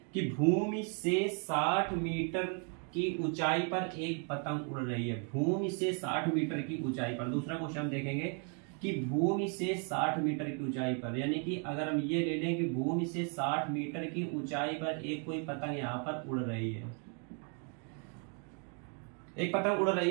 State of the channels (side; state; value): left; quieter; 38.7 dB